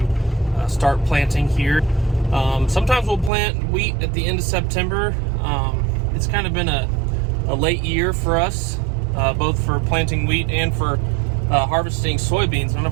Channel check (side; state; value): left; drops out; at 3.3 s